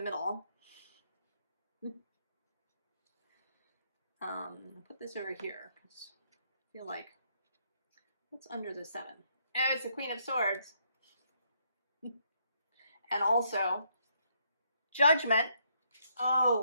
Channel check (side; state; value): both; inverted; correlation -0.73